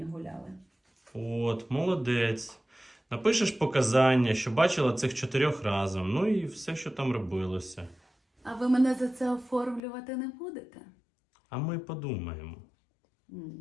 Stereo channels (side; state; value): right; drops out; at 9.8 s